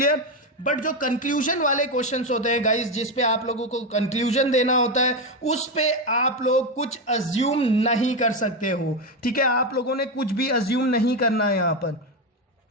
बट जो कंक्लूजन वाले क्वेश्चंस होते हैं गाइस, जिस पे आप लोगों को कंक्लूजन देना होता है, उस पे आप लोग कुछ अज्यूम नहीं कर सकते हो। ठीक है, आप लोगों ने कुछ भी अज्यूम नहीं करना है यहां पर।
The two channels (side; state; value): both; normal; correlation 0.11